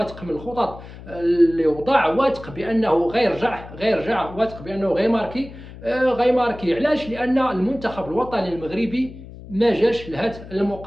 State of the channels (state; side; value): noise; left; hum, 16 dB below the sound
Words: من الخطط اللي وضع، واثق بأنه غيرجع، واثق بأنه غيماركي. علاش؟ لأن المنتخب الوطني المغربي ما جاش لهذه